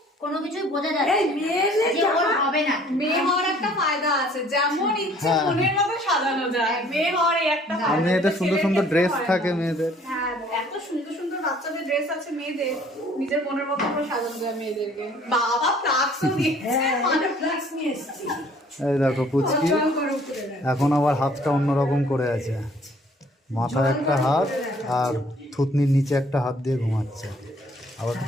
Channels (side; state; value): both; normal; correlation 0.57